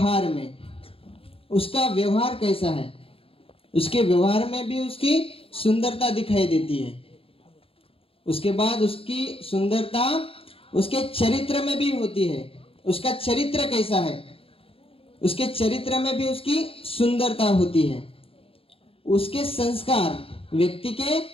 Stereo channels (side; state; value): right; late; 0.27 ms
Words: में। उसका व्यवहार कैसा है, उसके व्यवहार में भी उसकी सुंदरता दिखाई देती है। उसके बाद उसकी सुंदरता उसके चरित्र में भी होती है। उसका चरित्र कैसा है, उसके चरित्र में भी उसकी सुंदरता होती है। उसके संस्कार, व्यक्ति के